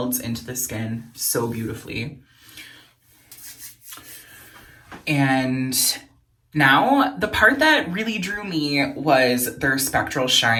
into the skin so beautifully. And now, the part that really drew me was their Spectral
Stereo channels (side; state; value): both; identical; correlation 1.00